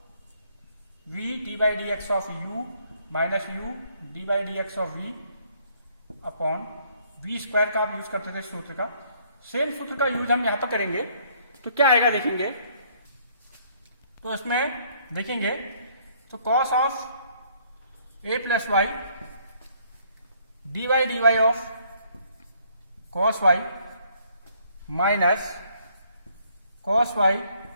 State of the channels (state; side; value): inverted; both; correlation -0.64